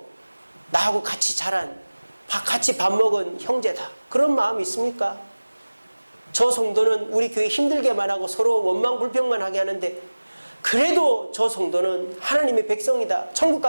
나하고 같이 자란, 같이 밥 먹은 형제다. 그런 마음이 있습니까? 저 성도는 우리 교회 힘들게만 하고 서로 원망불평만 하게 하는데 그래도 저 성도는 하나님의 백성이다.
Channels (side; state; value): both; inverted; correlation -1.00